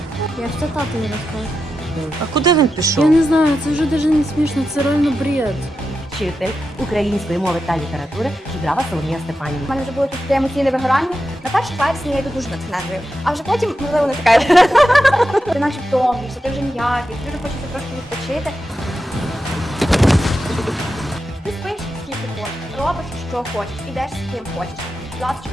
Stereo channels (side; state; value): both; normal; correlation 0.89